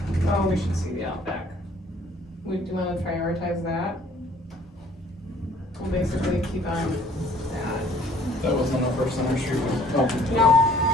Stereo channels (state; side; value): normal; both; correlation 0.57